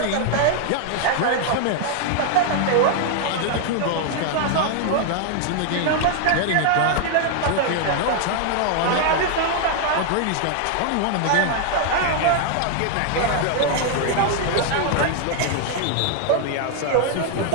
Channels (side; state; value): both; different; correlation 0.00